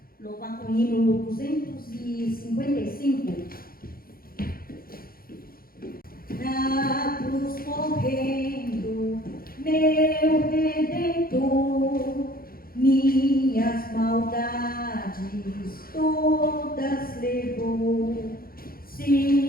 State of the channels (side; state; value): right; late; 0.43 ms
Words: Louvar com o hino 255. Na cruz correndo, meu Redentor, minhas maldades todas levou.